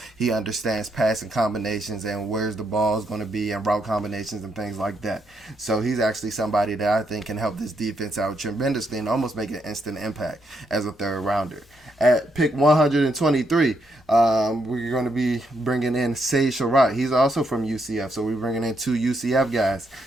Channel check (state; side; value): normal; both; correlation 0.77